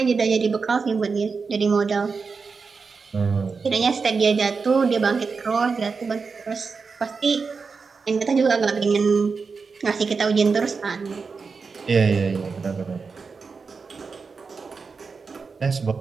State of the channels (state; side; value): quieter; left; 4.9 dB